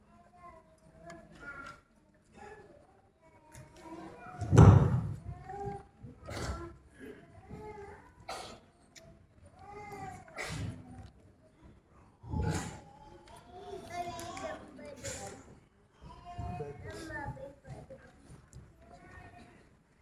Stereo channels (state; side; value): identical; both; correlation 1.00